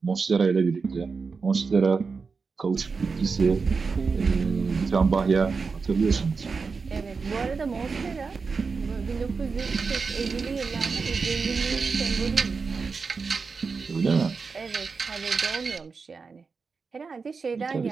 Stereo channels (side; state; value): left; quieter; 4.8 dB